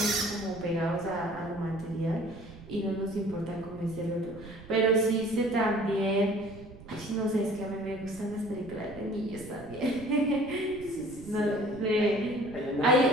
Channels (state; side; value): noise; right; rumble, 18 dB below the sound